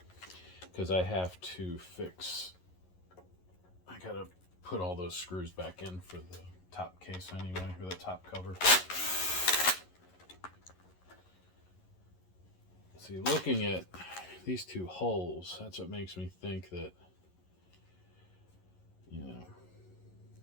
Because I have to fix, I gotta put all those screws back in for the top case anyway, or the top cover. See, looking at these 2 holes, that's what makes me think that, you know,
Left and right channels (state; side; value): late; right; 11 ms